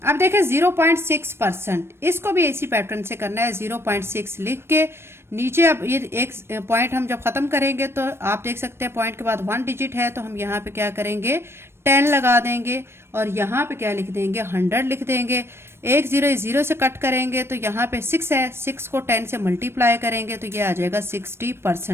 अब देखें 0.6%, इसको भी इसी पैटर्न से करना है। 0.6 लिख के नीचे अब ये एक पॉइंट हम जब खत्म करेंगे तो आप देख सकते हैं पॉइंट के बाद 1 डिजिट है, तो हम यहाँ पे क्या करेंगे 10 लगा देंगे और यहाँ पे क्या लिख देंगे 100 लिख देंगे। 1 0 0 से कट करेंगे तो यहाँ पे 6 है, 6 को 10 से मल्टीप्लाई करेंगे तो ये आ जाएगा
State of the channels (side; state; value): left; late; 0.12 ms